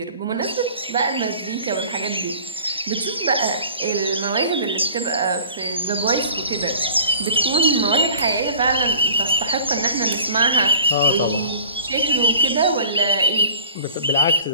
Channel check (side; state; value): both; inverted; correlation -0.46